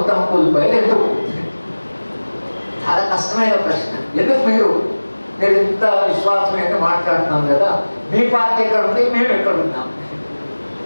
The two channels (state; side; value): inverted; both; correlation -1.00